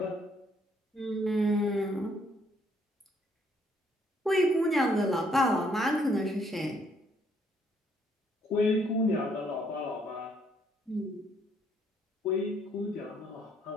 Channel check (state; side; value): normal; both; correlation 0.69